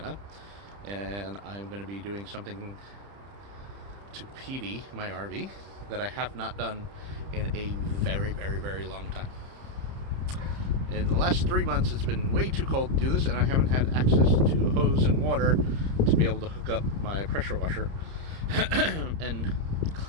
and I'm going to be doing something to petey my RV that I have not done in a very, very, very long time. In the last 3 months, it's been way too cold to do this, and I haven't had access to a hose and water to be able to hook up my pressure washer and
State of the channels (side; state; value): left; late; 30 ms